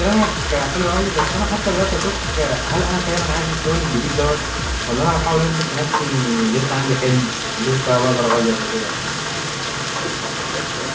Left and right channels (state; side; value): identical; both; correlation 1.00